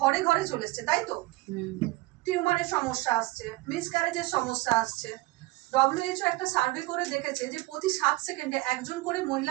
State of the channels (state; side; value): quieter; left; 21.0 dB